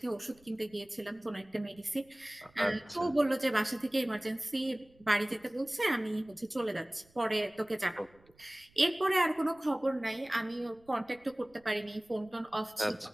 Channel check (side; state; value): right; noise; rumble, 30 dB below the sound